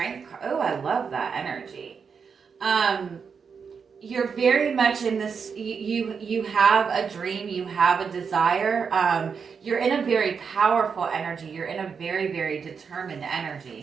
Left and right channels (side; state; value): left; quieter; 6.0 dB